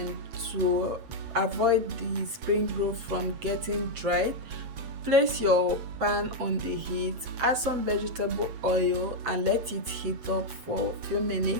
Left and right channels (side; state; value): left; late; 8.1 ms